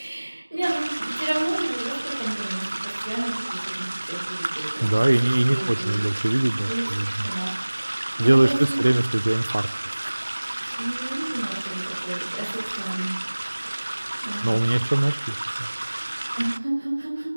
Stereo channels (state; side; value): inverted; both; correlation -1.00